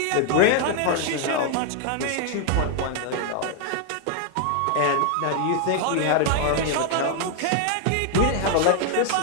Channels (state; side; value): different; both; correlation 0.00